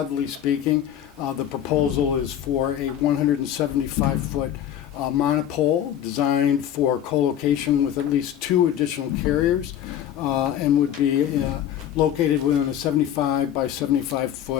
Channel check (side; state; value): right; quieter; 10.5 dB